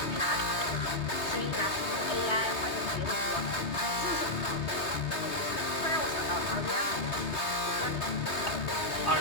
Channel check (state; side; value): late; right; 3.2 ms